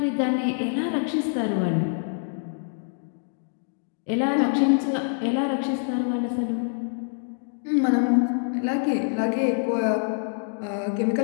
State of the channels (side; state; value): right; silent; digital silence